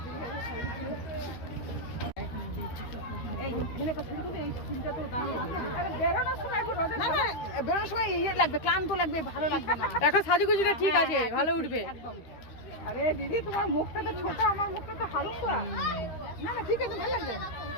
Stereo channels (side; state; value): right; late; 13 ms